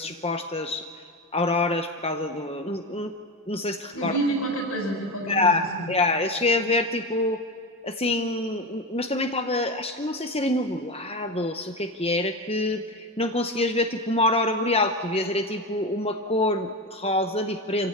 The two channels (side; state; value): both; normal; correlation 0.21